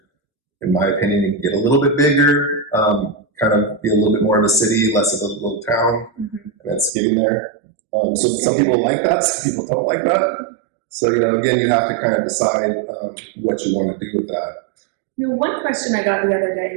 In my opinion, it can get a little bit bigger, kind of be a little bit more of a city, less of a little town, and it's getting there. So some people like that, some people don't like that. So, you know, again, you have to kind of decide what you want to do with that. You know, one question I got the other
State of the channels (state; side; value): drops out; left; at 6.9 s